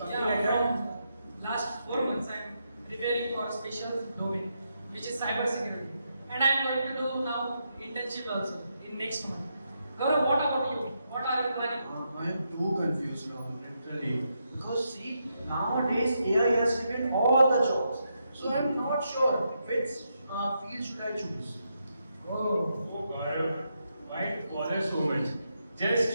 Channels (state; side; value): inverted; both; correlation -0.82